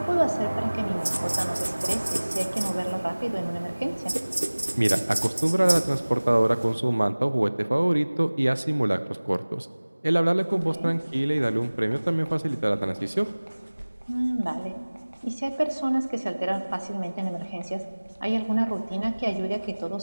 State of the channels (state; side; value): inverted; both; correlation -1.00